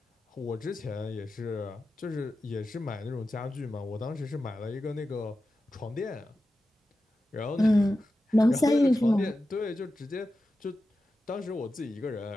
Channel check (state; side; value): normal; both; correlation 0.92